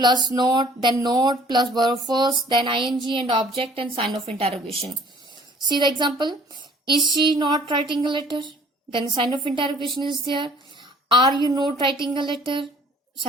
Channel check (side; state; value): both; normal; correlation 0.54